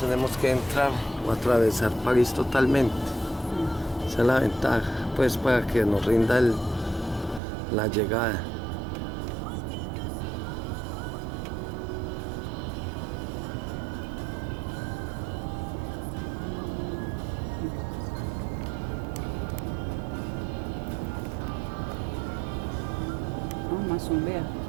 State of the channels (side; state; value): left; drops out; at 7.4 s